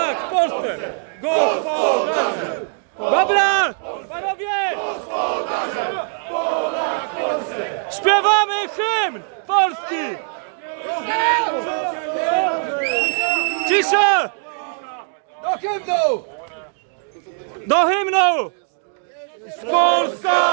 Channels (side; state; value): left; silent; 57 dB below the other